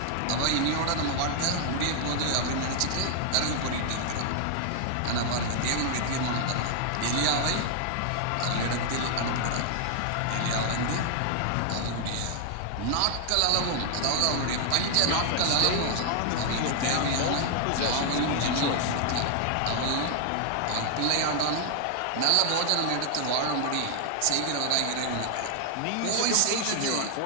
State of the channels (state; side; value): different; both; correlation 0.00